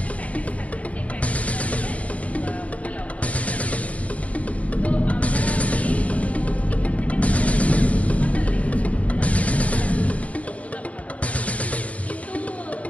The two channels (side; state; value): right; late; 0.067 ms